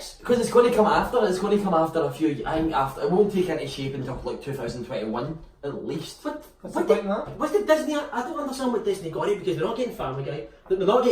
Because it's going to come after. It's going to come after a few. I think after it won't take any shape until like 2021 at least. What did Disney? I don't understand what Disney got it because they're not getting Family Guy. They're not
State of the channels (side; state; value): both; identical; correlation 1.00